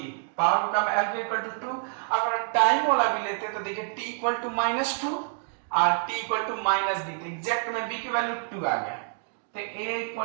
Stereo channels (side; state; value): left; silent; 60 dB below the other